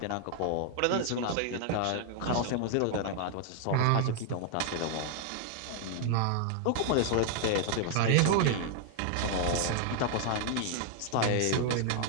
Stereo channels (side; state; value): both; different; correlation 0.00